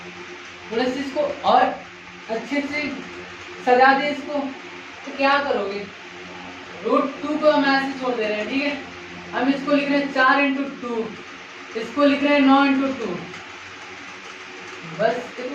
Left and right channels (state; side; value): identical; both; correlation 1.00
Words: थोड़ा सा इसको और अच्छे से सजा दे इसको, तो क्या करोगे, √2 को हम ऐसे छोड़ दे रहे हैं, ठीक है। हम इसको लिख रहे हैं 4 × 2, इसको लिख रहे हैं 9 × 2। बस देखो